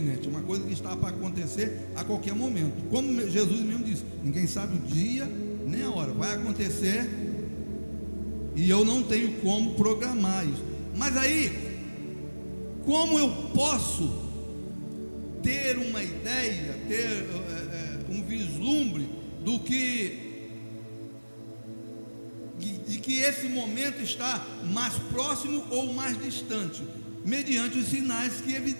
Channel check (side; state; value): both; inverted; correlation -1.00